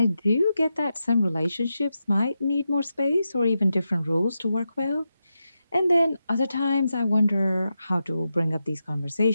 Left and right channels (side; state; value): both; inverted; correlation -0.89